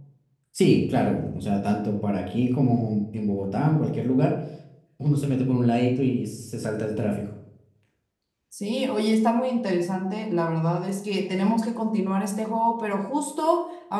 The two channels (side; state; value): both; identical; correlation 1.00